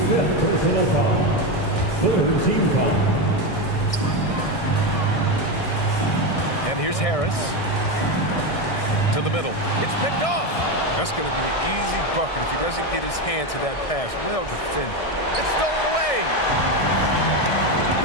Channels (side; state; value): right; late; 1.6 ms